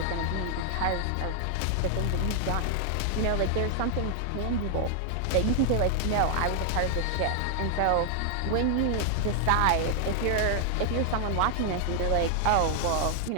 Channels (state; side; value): different; both; correlation 0.00